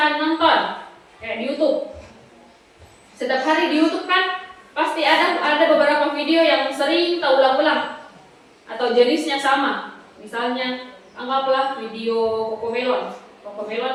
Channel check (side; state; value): both; identical; correlation 1.00